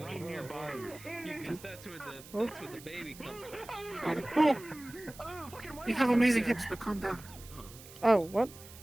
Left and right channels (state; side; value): noise; right; hiss, 18 dB below the sound